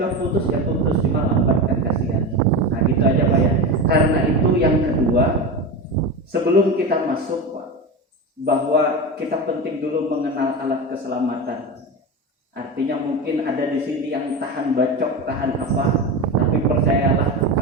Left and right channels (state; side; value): normal; both; correlation 0.22